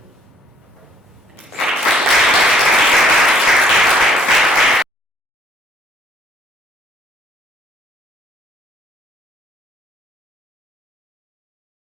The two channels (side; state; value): both; normal; correlation 0.63